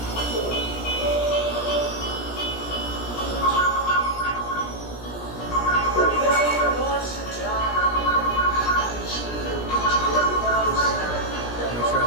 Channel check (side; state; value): right; late; 17 ms